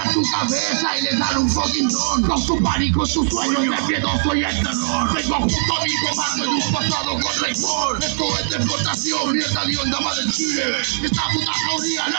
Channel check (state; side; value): silent; left; digital silence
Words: tu cabeza y le dan un fucking don. Causo pánico en tus sueños, de miedoso y el terror. Vengo junto a mi comando y un pasado con récord. Esto es deportación, mierda de onda más del Chile. Esta puta jauría